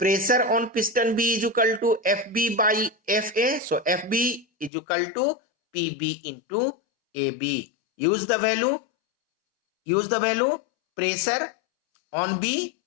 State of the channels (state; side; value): drops out; right; at 4.7 s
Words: on piston B is equal to FB by FA. So FB is equal to PB into AB. Use the value. Pressure on B